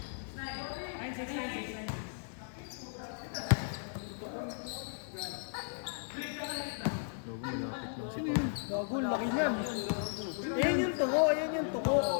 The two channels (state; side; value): silent; right; digital silence